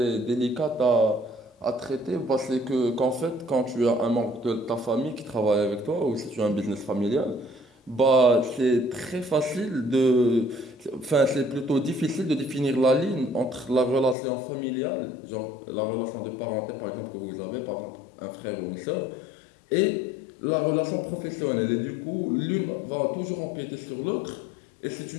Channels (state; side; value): drops out; right; at 14.2 s